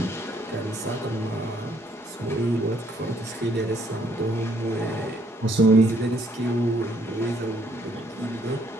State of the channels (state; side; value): normal; both; correlation 0.67